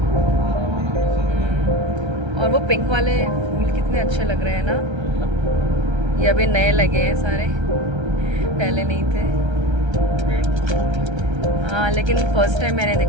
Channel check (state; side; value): late; left; 1.3 ms